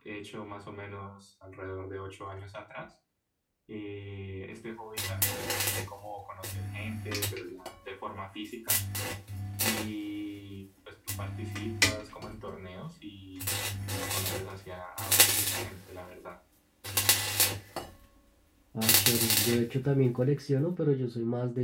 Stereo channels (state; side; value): identical; both; correlation 1.00